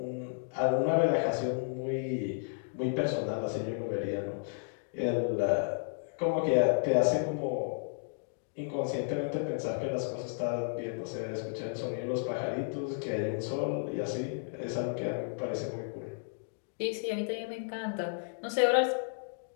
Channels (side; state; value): right; silent; digital silence